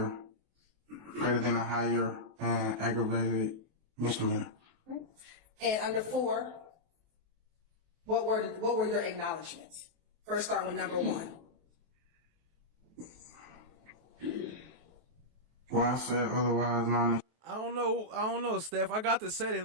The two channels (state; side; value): late; left; 23 ms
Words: and aggravated misdemeanor. And under 4, what were your acknowledgments? First, start with number 1. Well, I said otherwise known as. I don't know, Steph. I got the setting